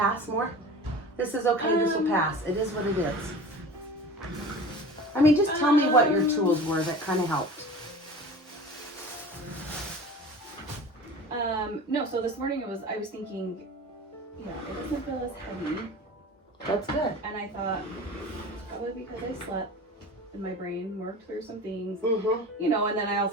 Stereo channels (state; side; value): normal; both; correlation 0.37